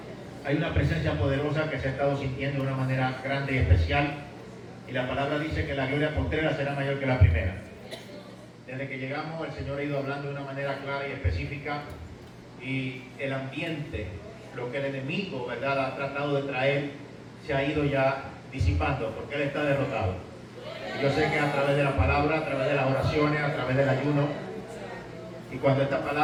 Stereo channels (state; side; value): identical; both; correlation 1.00